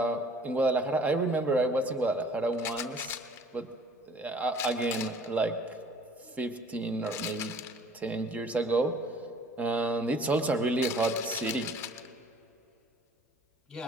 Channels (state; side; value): normal; both; correlation 0.53